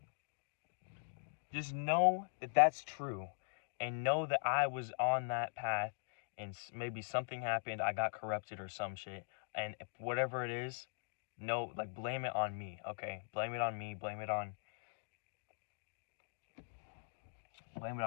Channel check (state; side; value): silent; right; digital silence